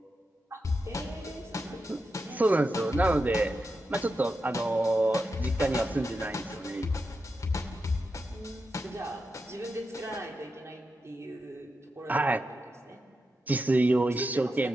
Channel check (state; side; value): normal; both; correlation 0.88